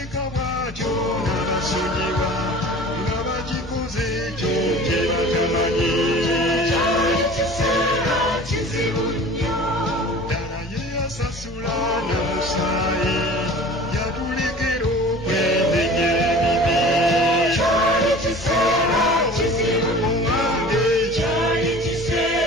bw'atyo n'abasonyiwa nga bagikoze ekyo kye batamanyi cyari kiseera kizibu nnyo ddala ye yasasula na musaayi yatulekera okwendenyera ebibi cyari kiseera kizibu owange cyari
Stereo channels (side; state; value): both; normal; correlation 0.42